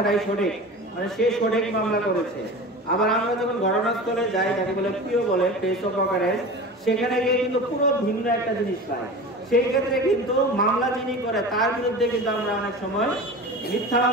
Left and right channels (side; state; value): both; normal; correlation 0.33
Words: সঠিক, মানে সে সঠিক মামলা করেছে। আবার আমরা যখন ঘটনাস্থলে যাই, তাকে বলে প্রিয় বলে প্লেস অফ অকারেন্স, সেখানে গিয়ে কিন্তু পুরো ভিন্ন একটা জিনিস পাই। সেই ক্ষেত্রে কিন্তু মামলা যিনি করে তার বিরুদ্ধে কিন্তু আমরা অনেক সময় মিথ্যা